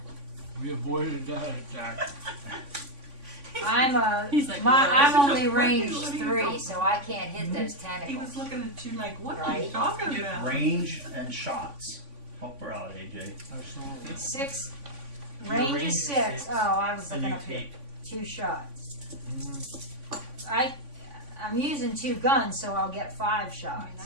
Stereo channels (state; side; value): late; left; 3.5 ms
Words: We avoided that attack. He's like, I'm "Well, only range what are you 3, talking so I can't hit those He tentacles. was looking at you like, what are Right. you talking about? Range and shots. Help her out, AJ. I saw it. 6. Your Range range is is 6. 6. Oh, I was And looking you up here. take. 2 shots. I'm using 2 guns, so I'll get 5 I mean, shots.